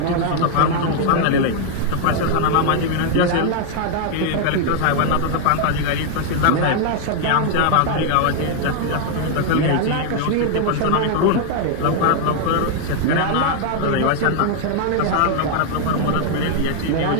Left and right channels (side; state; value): both; different; correlation 0.00